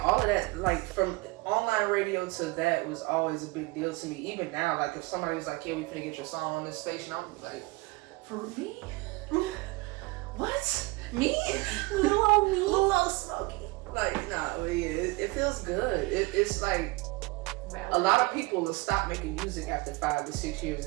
all of that, like from online radio to that was always a big deal to me. Even now, like if somebody was like, "Yeah, we finna get your song on this station," I'm like, "For me? What? Me? Little Smokey?" Like, nah, but yeah, it feels good. It's like a lot of people will stop making music after 5 to 6 years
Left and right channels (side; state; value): left; quieter; 24.1 dB